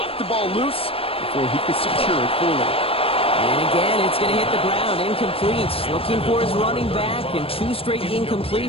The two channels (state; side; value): late; right; 0.27 ms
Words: the ball loose before he could secure it fully. And again, it's going to hit the ground. Incomplete. Looking for his running back, and 2 straight